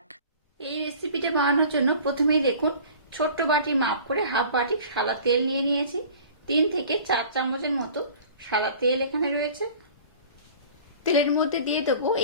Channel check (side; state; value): both; inverted; correlation -0.45